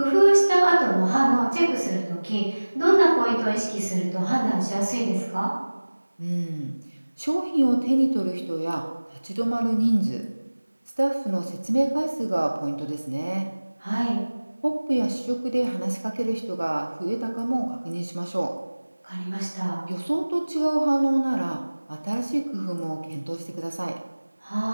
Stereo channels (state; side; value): inverted; both; correlation -1.00